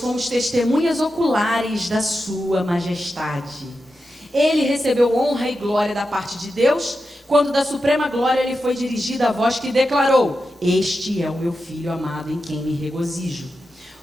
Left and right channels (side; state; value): both; normal; correlation 0.90